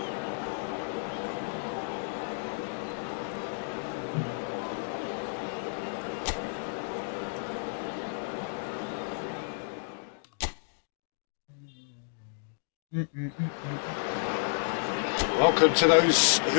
Welcome to those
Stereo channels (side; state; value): right; silent; digital silence